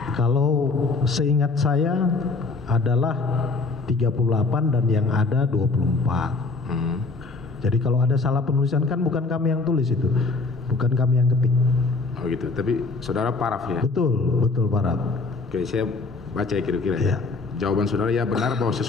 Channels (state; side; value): quieter; right; 3.7 dB